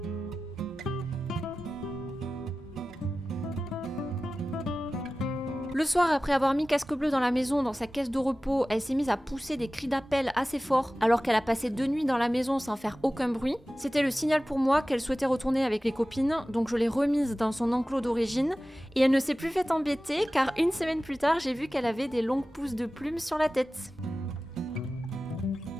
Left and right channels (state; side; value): normal; both; correlation 0.96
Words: Le soir, après avoir mis Casque Bleu dans la maison, dans sa caisse de repos, elle s'est mise à pousser des cris d'appel assez forts, alors qu'elle a passé 2 nuits dans la maison sans faire aucun bruit. C'était le signal pour moi qu'elle souhaitait retourner avec les copines, donc je l'ai remise dans son enclos d'origine, et elle ne s'est plus fait embêter, car une semaine plus tard, j'ai vu qu'elle avait des longues pousses de plumes sur la tête.